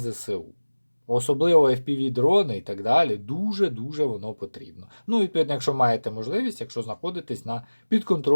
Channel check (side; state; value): both; inverted; correlation -1.00